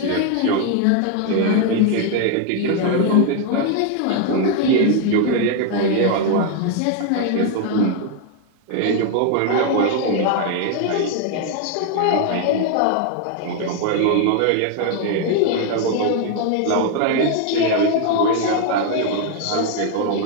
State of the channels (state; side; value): different; both; correlation 0.00